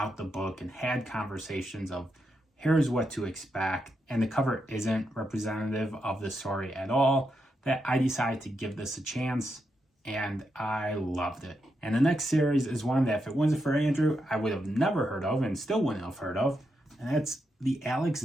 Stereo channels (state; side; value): normal; both; correlation 0.84